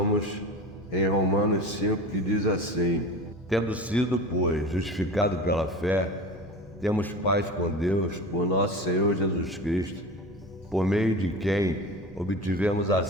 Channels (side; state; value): both; normal; correlation 0.33